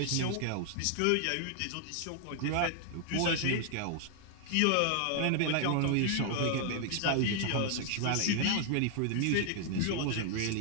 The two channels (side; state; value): both; different; correlation 0.00